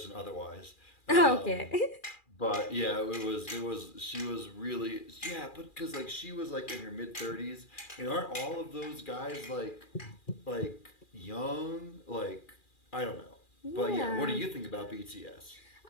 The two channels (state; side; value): late; right; 2.4 ms